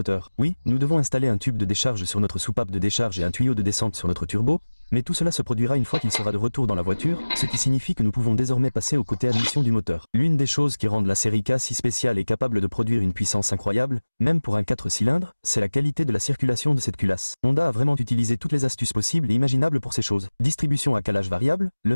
Oui, nous devons installer un tube de décharge sur notre soupape de décharge et un tuyau de descente sur notre turbo, mais tout cela se produira une fois qu'il sera de retour dans la voiture, ce qui signifie que nous pouvons désormais passer au côté admission du moteur. L'une des choses qui rendent la série K si spéciale et capable de produire une puissance incroyable, même pour un 4 cylindres, c'est la qualité de la circulation de cette culasse. Honda a vraiment utilisé toutes les astuces possibles et imaginables pour ces choses. Distribution à calage variable,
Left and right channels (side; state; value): both; inverted; correlation -1.00